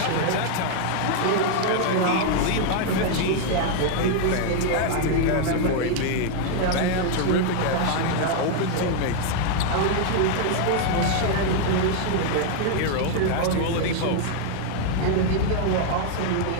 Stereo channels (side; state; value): both; different; correlation 0.00